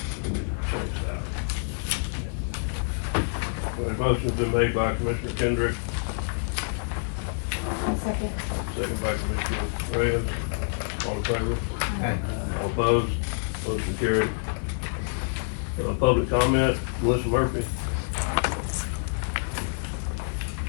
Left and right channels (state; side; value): silent; right; 58 dB below the other